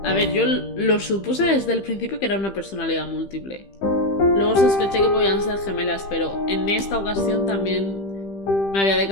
A ver, yo lo supuse desde el principio que era una personalidad múltiple. Luego sospeché que podían ser gemelas, pero en esta ocasión también me había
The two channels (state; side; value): late; right; 15 ms